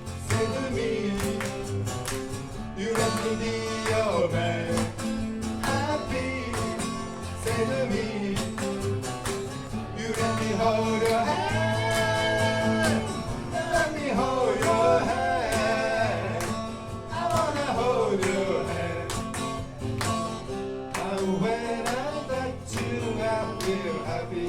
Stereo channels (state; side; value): identical; both; correlation 1.00